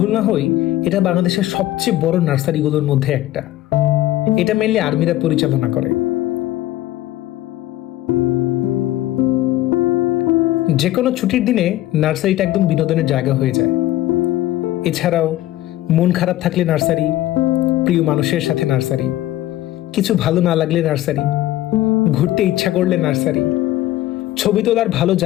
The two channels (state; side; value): quieter; right; 15.0 dB